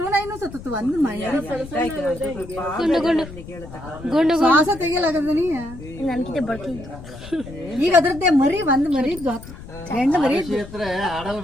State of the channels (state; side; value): noise; left; rumble, 14 dB below the sound